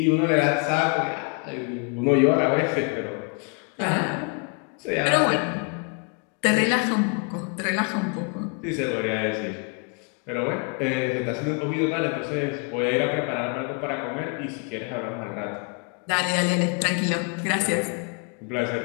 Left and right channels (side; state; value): right; quieter; 35.0 dB